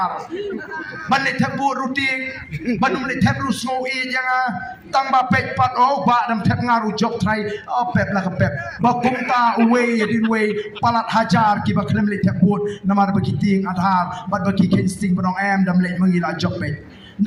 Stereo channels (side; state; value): both; identical; correlation 1.00